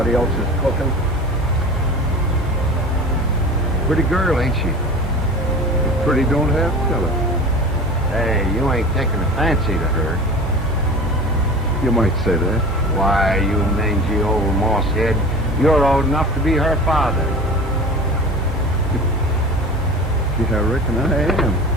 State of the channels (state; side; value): normal; both; correlation 0.36